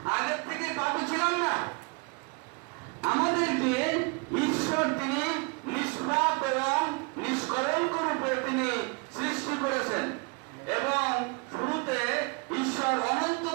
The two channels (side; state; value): left; quieter; 31.5 dB